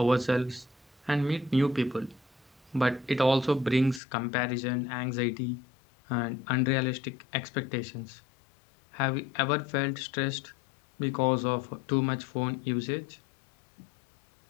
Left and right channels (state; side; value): drops out; right; at 4.0 s